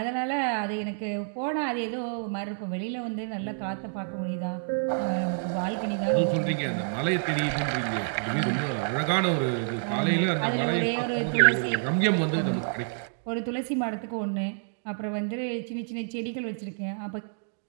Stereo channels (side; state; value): left; silent; digital silence